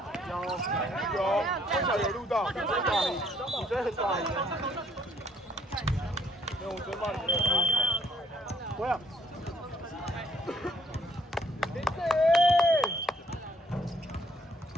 有，至少有录到。你真的很大力。没有，我真骂你没有。不要。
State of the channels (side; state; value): both; normal; correlation 0.65